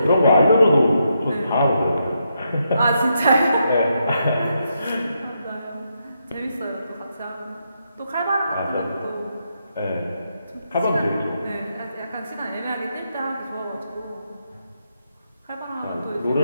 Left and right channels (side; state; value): both; inverted; correlation -0.81